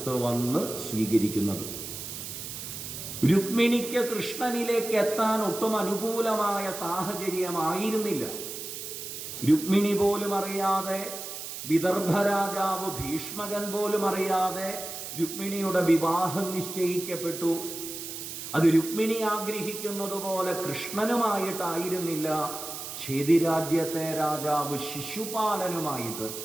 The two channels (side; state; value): right; noise; hiss, 8 dB below the sound